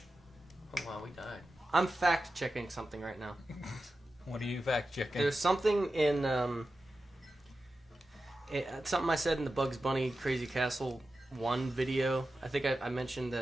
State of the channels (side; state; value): both; normal; correlation 0.93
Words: Oh, wow, we died. I'm fact-checking something right now. What are you fact checking? There's something in, something I said in the Bugs Bunny Crazy Castle 1 video. I think I mentioned